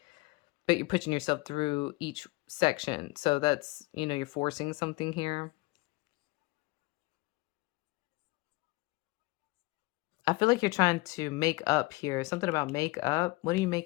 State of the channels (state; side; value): quieter; right; 23.5 dB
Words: but you're pushing yourself through each section. So that's, you're forcing something here. I feel like you're trying to make up here. Something about make up. What are you